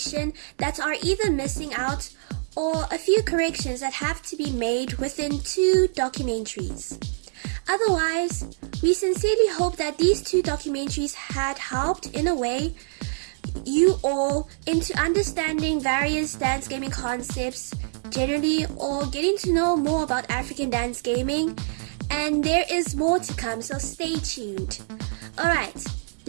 that are either missing out or a few corrections that have to be made within two documentaries. Otherwise, we sincerely hope that these two documentaries had helped in a way you all into understanding various dance gaming concepts generally, or getting to know more about African dance gaming, and there is more to come, so stay tuned. Alright,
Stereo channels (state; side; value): silent; left; digital silence